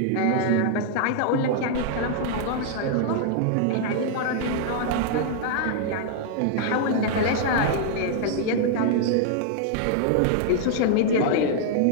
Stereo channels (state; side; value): different; both; correlation 0.00